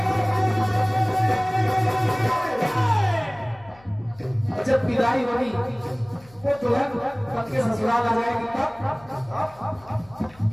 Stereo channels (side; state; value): left; noise; hum, 26 dB below the sound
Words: जब विदाई होगी वो दुल्हन पति के ससुराल आ जाएगी, तब